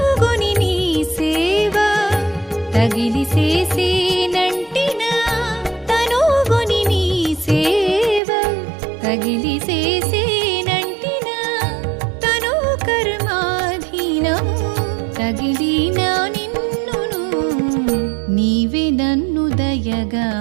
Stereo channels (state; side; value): drops out; left; at 8.2 s